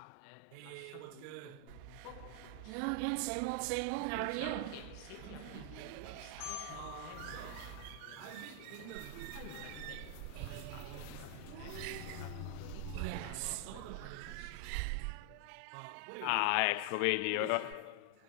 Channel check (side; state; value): both; different; correlation 0.00